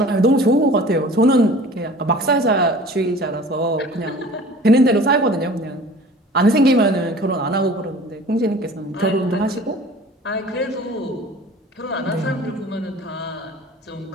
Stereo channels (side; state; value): both; normal; correlation 0.44